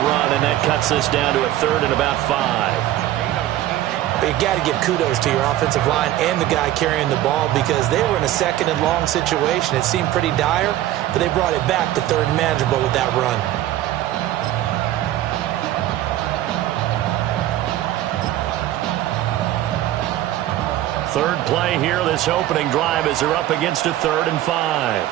run, and that cuts this down to a 3rd and about 5. But you got to give kudos to your offensive line and the guy carrying the ball because they were in a 2nd and long situation. It seemed pretty dire, but they brought it back to 3rd and manageable with that run. Third play here, this opening drive, as they're up against a 3rd and 5.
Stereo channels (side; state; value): left; quieter; 13.8 dB